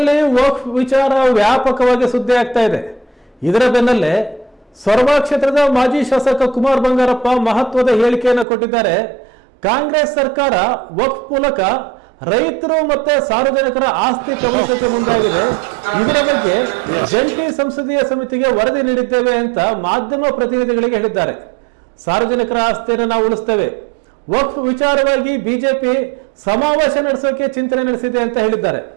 ರಾಜ್ಯದಲ್ಲಿ ವಕ್ಫ್ ವಿಚಾರ ವ್ಯಾಪಕವಾಗಿ ಸುದ್ದಿ ಆಗ್ತಾ ಇದೆ. ಇದರ ಬೆನ್ನಲ್ಲೇ ಸೊರಬ ಕ್ಷೇತ್ರದ ಮಾಜಿ ಶಾಸಕ ಕುಮಾರ್ ಬಂಗಾರಪ್ಪ ಮಹತ್ವದ ಹೇಳಿಕೆಯನ್ನು ಕೊಟ್ಟಿದ್ದಾರೆ. ಕಾಂಗ್ರೆಸ್ ಸರ್ಕಾರ ವಕ್ಫ್ ಮೂಲಕ ರೈತರು ಮತ್ತೆ ಸಾರ್ವಜನಿಕರ ಆಸ್ತಿ ಕಬಳಿಸಕ್ಕೆ ಮುಂದಾಗಿದೆ. ಇದರ ಬಗ್ಗೆ ಜಂಟಿ ಸಂಸದೀಯ ಸಮಿತಿಗೆ ವರದಿ ನೀಡಿದ್ದೇವೆ ಅಂತ ಮಾಧ್ಯಮ ಪ್ರತಿನಿಧಿಗಳಿಗೆ ಹೇಳಿದ್ದಾರೆ. ಸಾರ್ವಜನಿಕರ ಆಸ್ತಿಯನ್ನು ನಾವು ಉಳಿಸ್ತೇವೆ. ವಕ್ಫ್ ವಿಚಾರವಾಗಿ ಬಿಜೆಪಿ ಸಮಾವೇಶ ನಡೆಸೋಕೆ ಚಿಂತನೆ ನಡೆಸಿದೆ ಅಂತ ಹೇಳಿದ್ದಾರೆ.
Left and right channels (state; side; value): drops out; left; at 8.5 s